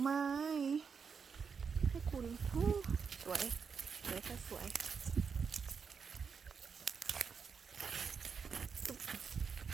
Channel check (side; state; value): left; quieter; 6.0 dB